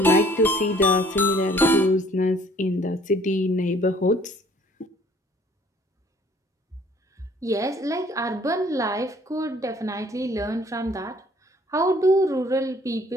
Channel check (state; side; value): normal; both; correlation 0.58